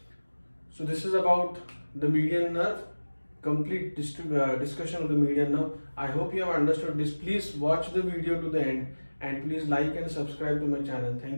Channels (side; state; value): both; inverted; correlation -1.00